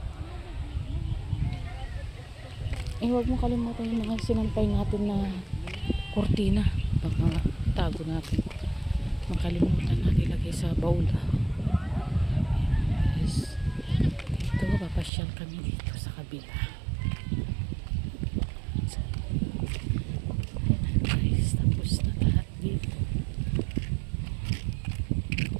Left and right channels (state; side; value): drops out; left; at 15.1 s